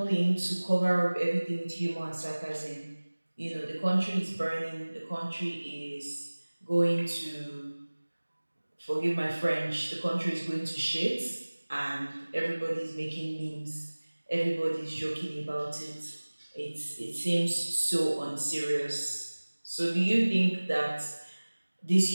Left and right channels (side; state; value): both; inverted; correlation -1.00